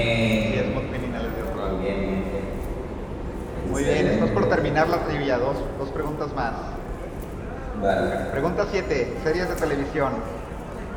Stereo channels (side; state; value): both; identical; correlation 1.00